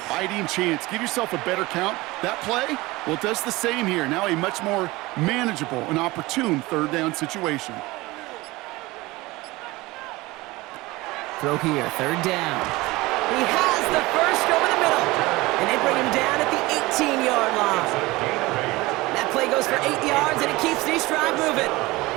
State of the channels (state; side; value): quieter; left; 20.9 dB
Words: chance. Give yourself a better count. That play, well, it does the same here. Now a much more manageable and opportune 3rd down situation. Throw here, third down. He has the first over the middle. And they bring him down at the 18-yard line. That play goes for 8 yards, and it keeps the East drive moving.